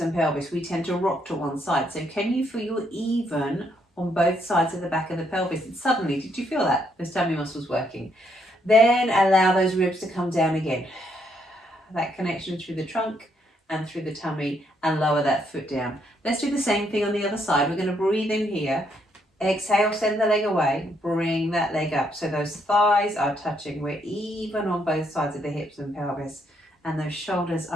pelvis? We tend to rock to one side. So can you feel you're even on both sides of the back of the pelvis? And suddenly, did you feel that? Those tummy muscles working. Then allow those ribs to come down again. That connection through the trunk and through the tummy, and lower that foot down. Let's do the same thing on the other side. We're going to breathe in here. Exhale, send the leg away. Bring that leg up. So those thighs are touching. We're even on both sides of the hips and pelvis. And those shoulders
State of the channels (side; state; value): both; normal; correlation 0.73